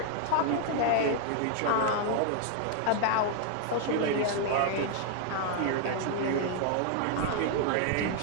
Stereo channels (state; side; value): different; both; correlation 0.00